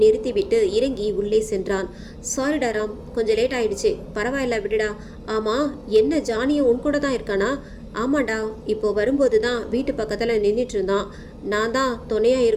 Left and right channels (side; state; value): both; identical; correlation 1.00